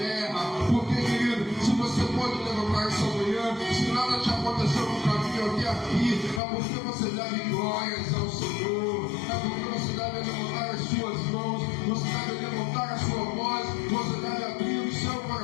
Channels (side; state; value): right; drops out; at 6.4 s